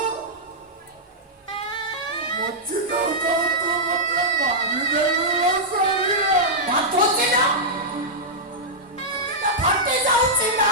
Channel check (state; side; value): normal; both; correlation -0.09